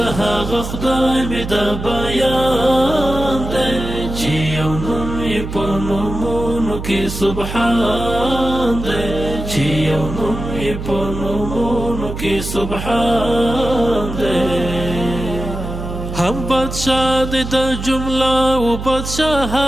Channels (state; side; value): noise; right; hum, 7 dB below the sound